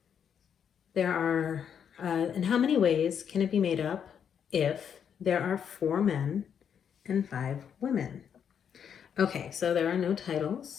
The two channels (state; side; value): quieter; right; 8.0 dB